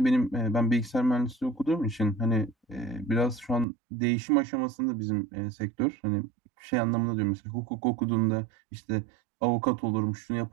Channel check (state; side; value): drops out; left; at 3.7 s